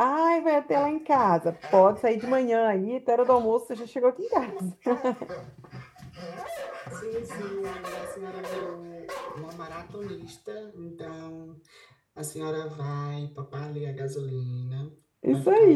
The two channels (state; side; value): identical; both; correlation 1.00